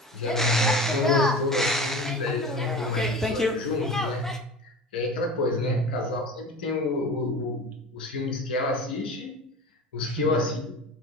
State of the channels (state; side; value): normal; both; correlation 0.34